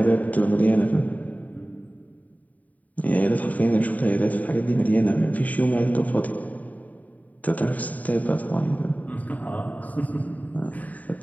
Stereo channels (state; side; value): late; right; 0.072 ms